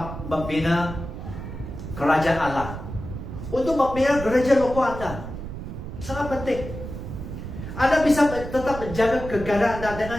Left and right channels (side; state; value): right; noise; rumble, 9 dB below the sound